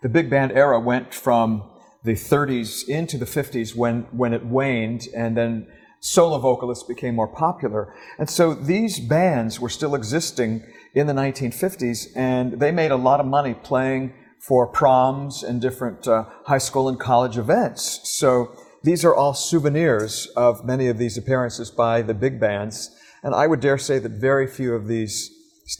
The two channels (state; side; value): identical; both; correlation 1.00